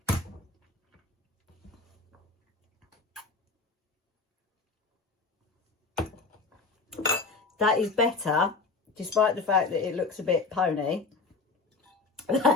that is better, despite the fact that it looks a bit pony.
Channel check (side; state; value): right; quieter; 4.0 dB